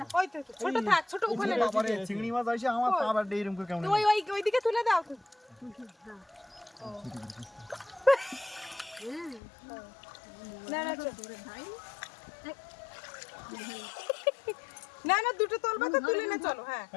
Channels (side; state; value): right; drops out; at 9.4 s